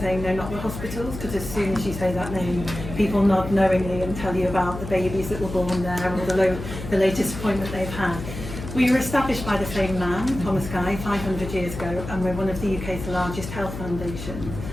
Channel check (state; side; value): noise; left; hum, 9 dB below the sound